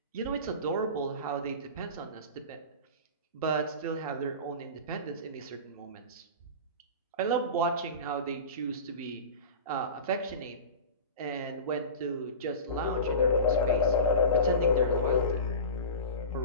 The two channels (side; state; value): both; inverted; correlation -0.31